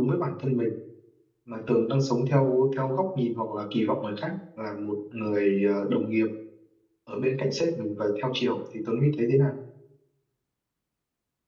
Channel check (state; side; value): identical; both; correlation 1.00